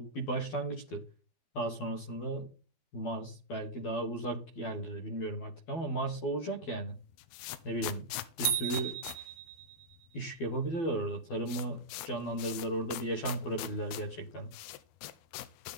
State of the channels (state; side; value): late; right; 13 ms